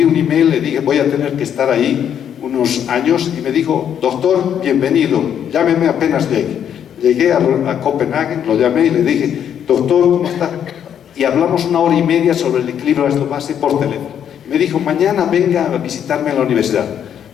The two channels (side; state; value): right; quieter; 9.1 dB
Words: un email, le dije, voy a tener que estar ahí unos años, y me dijo, doctor, bienvenido, llámeme apenas llegue. Llegué a Copenhague, lo llamé y le dije, doctor, ¿cómo está? Y hablamos 1 hora y media sobre el equilibrio ácido-base por teléfono. Me dijo, mañana venga a visitarme en la universidad.